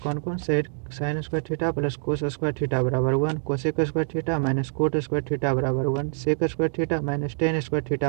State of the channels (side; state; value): left; silent; 61 dB below the other